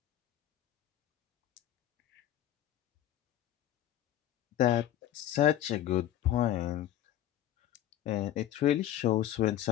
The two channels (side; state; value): right; quieter; 12.2 dB